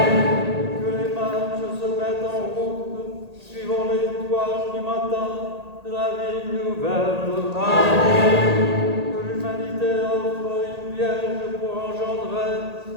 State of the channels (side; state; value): left; late; 1.8 ms